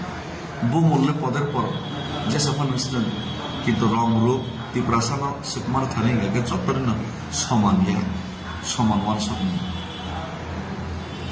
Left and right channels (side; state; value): both; identical; correlation 1.00